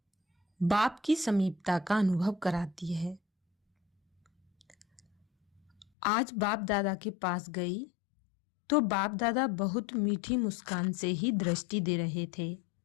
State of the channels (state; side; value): drops out; right; at 5.9 s